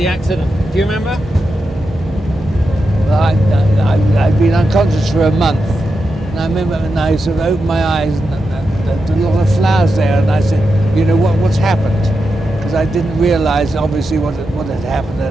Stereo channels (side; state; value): both; normal; correlation 0.88